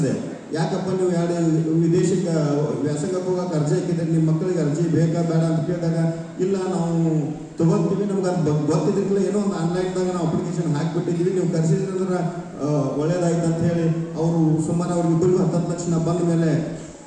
ಯಾಕಪ್ಪ ನೀವು 2 ವಿದೇಶಕ್ಕೆ ವ್ಯಾಸಂಗಕ್ಕೆ ಹೋಗಕ್ಕೆ ಅರ್ಜಿ ಹಾಕಿದ್ರೆ ನಿಮ್ಮ ಮಕ್ಕಳಿಗೆ ಅರ್ಜಿ ಬೇಕಾ ಬೇಡ ಅಂತ ಕೇಳಿದಾಗ ಇಲ್ಲ ನಾವು ತಗೋತೀವಿ, ನಮ್ಗೆ ಅದು ಗೊತ್ತಿದ್ದಿಲ್ಲ, ಏನೋ ಒಂದು ಆನ್ಲೈನ್ದಾಗ ನಾವು ಅಪ್ಲಿಕೇಶನ್ ಹಾಕಿಬಿಟ್ಟಿದ್ವಿ, ನೀವು ಕರೆಸಿದ್ರಿ ಅಂದ್ರೆ ಒಳ್ಳೇದಾಯ್ತು ಅಂತ ಹೇಳಿ ಅವರು ಸುಮಾರು ಅವ್ರಿಗಿಬ್ಬರಿಗೂ 10 ಲಕ್ಷ ಬಂದ ಮೇಲೆ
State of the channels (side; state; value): both; identical; correlation 1.00